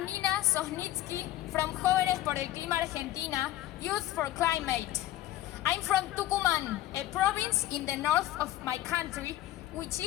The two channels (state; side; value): quieter; right; 14.4 dB